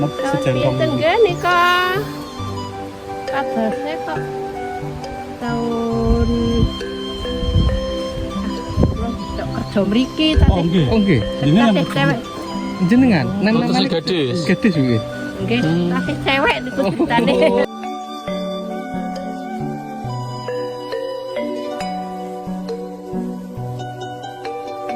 Sejentong ini. Tenggene kok. Kabarnya kok tahun kerja mriki Oh nggih. Oh nggih, Ini yang tasih cewek. jenengan nang Oh, tasih gadis. gadis nggih. Nggih, tasih cewek niku ceritane.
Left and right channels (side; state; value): both; identical; correlation 1.00